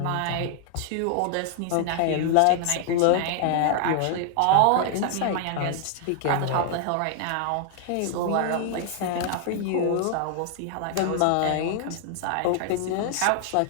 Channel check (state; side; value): different; both; correlation 0.00